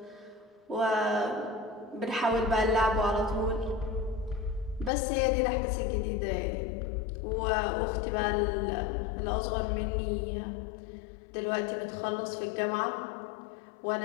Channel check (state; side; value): drops out; right; at 4.9 s